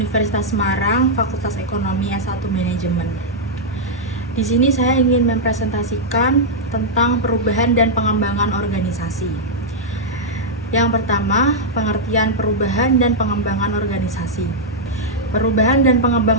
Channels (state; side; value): normal; both; correlation -0.06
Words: Semarang, Fakultas Ekonomi S1 Manajemen. Di sini saya ingin mempresentasikan tentang perubahan dan pengembangan organisasi. Yang pertama, pengertian perubahan dan pengembangan organisasi. Perubahan dan